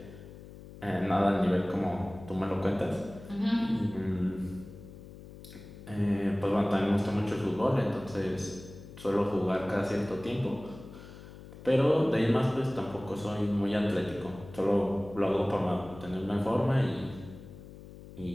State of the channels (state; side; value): noise; left; hum, 16 dB below the sound